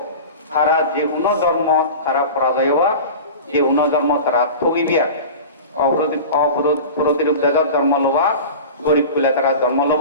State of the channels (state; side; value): inverted; both; correlation -0.33